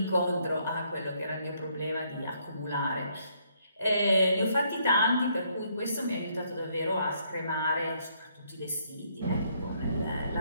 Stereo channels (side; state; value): both; inverted; correlation -0.70